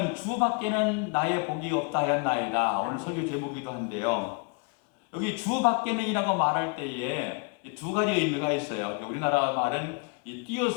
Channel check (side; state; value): right; quieter; 34.5 dB